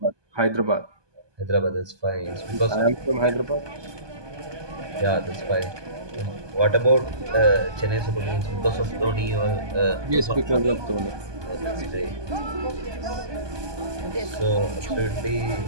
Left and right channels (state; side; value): late; left; 1.2 ms